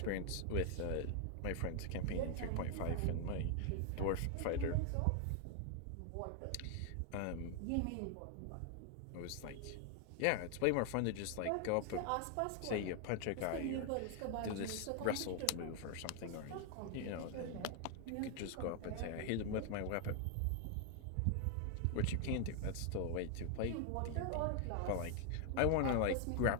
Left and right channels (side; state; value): both; different; correlation 0.00